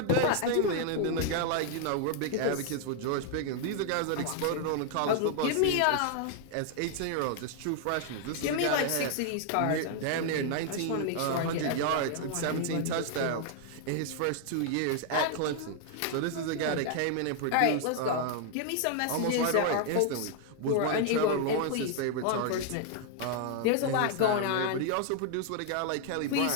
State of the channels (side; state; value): both; different; correlation 0.00